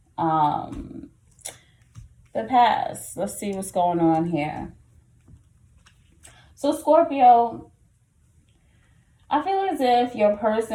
the past. Let's see what's going on here. So Scorpio, I feel as if you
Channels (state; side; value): identical; both; correlation 1.00